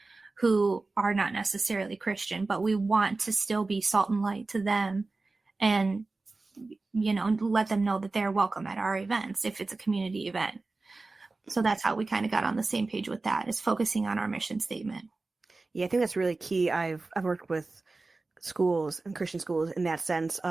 who are not necessarily Christian, but we want to still be salt and light to them and, let them know that they're welcome at our events if it's a community event. So that's how we kind of got on the same page with that, is focusing on our mission statement. Yeah, I think that's really key. I've worked with schools and Christian schools in that sense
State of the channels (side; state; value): left; quieter; 3.5 dB